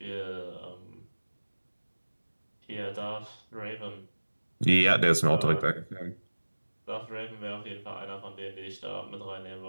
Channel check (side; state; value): both; inverted; correlation -1.00